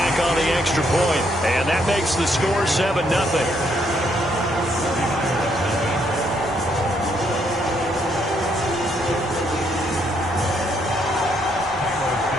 on the extra point, and that makes the score 7-0.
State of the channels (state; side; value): normal; both; correlation 0.73